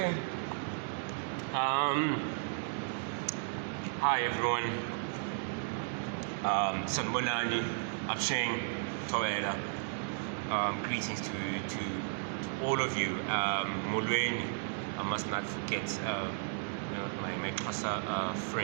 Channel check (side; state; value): left; silent; digital silence